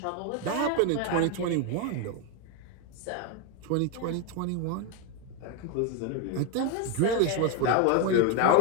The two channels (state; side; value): different; both; correlation 0.01